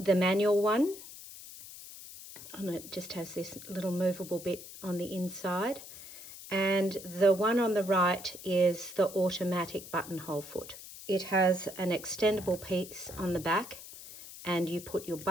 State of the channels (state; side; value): noise; left; hiss, 14 dB below the sound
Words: manual one, and it just has this little movable bit on the inside. And the one on the right is the automatic buttonhole foot. It has an extendable piece on the back, and you put your